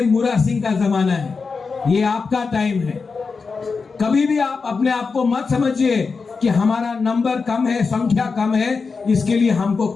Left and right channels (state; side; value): quieter; right; 4.8 dB